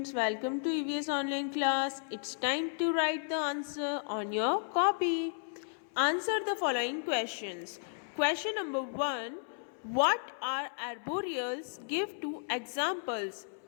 Welcome to EVS online class. It's time to write the answer on your copy. Answer the following questions. Question number 1. What are arboreals? Give two examples.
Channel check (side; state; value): right; silent; 55 dB below the other